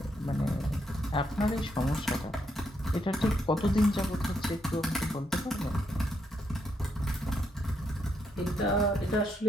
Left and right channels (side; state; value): both; normal; correlation 0.78